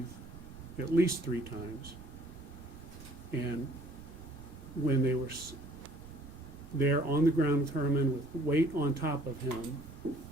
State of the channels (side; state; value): right; noise; rumble, 17 dB below the sound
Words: at least 3 times. And when they were there on the ground with Herman with weight on top of him,